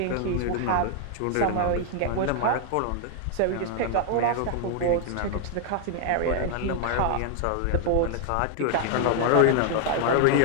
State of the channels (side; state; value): both; different; correlation 0.00